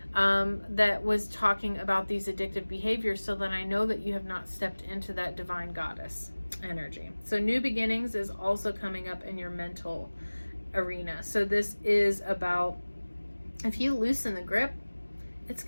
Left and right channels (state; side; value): inverted; both; correlation -1.00